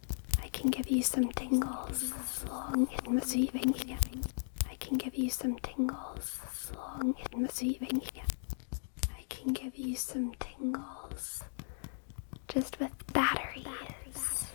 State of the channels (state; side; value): silent; right; digital silence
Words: I can give you some tingles. I can give you some tingles. I can give you some tingles just with batteries.